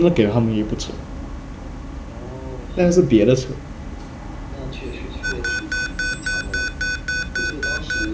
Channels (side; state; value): both; identical; correlation 1.00